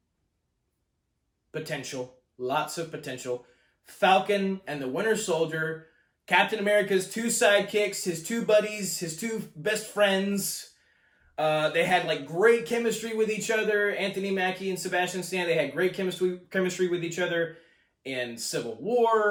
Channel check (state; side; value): identical; both; correlation 1.00